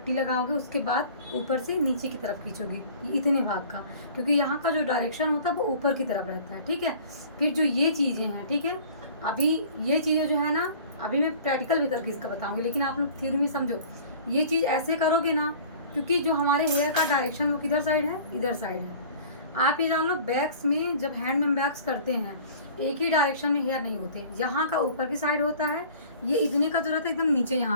लगाओगे, उसके बाद ऊपर से नीचे की तरफ खींचोगे इतने भाग का, क्योंकि यहाँ का जो डायरेक्शन होता है वो ऊपर की तरफ रहता है, ठीक है। फिर जो ये चीज़ें हैं, ठीक है, अभी ये चीज़ें जो है ना, अभी मैं प्रैक्टिकल भी करके इसका बताऊँगी, लेकिन आप लोग थ्योरी में समझो। ये चीज़ ऐसे करोगे ना, क्योंकि जो हमारे हेयर का डायरेक्शन वो किधर साइड है, इधर साइड है। आप ये जान लो, बैक्स में जब हैंड में बैक्स करते हैं एक ही डायरेक्शन में हेयर नहीं होते, यहाँ का ऊपर की साइड होता है, ये इतने का जो रहता है एकदम नीचे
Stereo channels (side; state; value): both; inverted; correlation -0.46